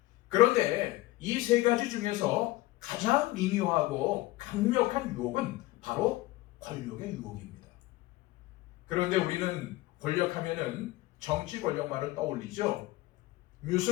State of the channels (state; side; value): quieter; right; 18.6 dB